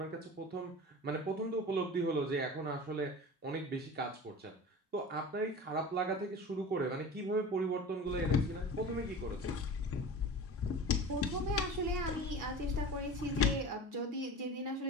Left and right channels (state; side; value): normal; both; correlation 0.35